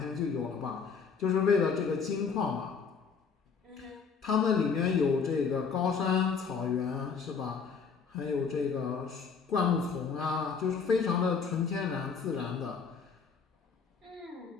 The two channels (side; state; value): right; quieter; 5.8 dB